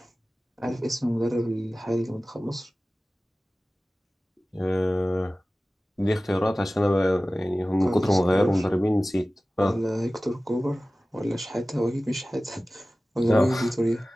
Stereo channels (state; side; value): normal; both; correlation 0.97